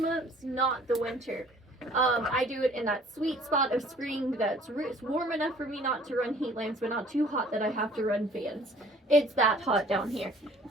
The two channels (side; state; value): both; normal; correlation 0.54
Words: not the winter. I do it in that sweet spot of spring that's warm enough for me not to run heat lamps, but not too hot that I have to run fans. It's that hot down here.